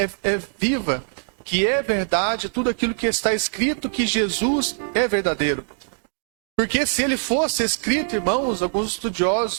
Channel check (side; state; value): left; silent; digital silence